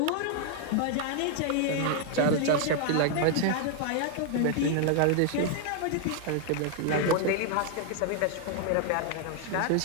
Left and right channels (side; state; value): both; different; correlation 0.00